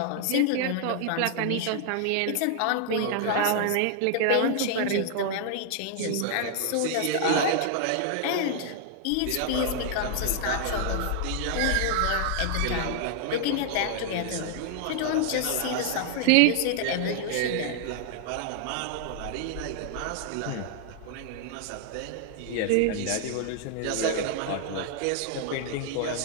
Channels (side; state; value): both; different; correlation 0.00